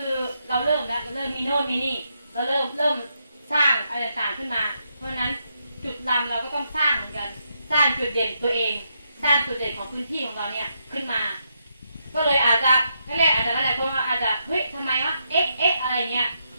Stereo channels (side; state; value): both; inverted; correlation -0.80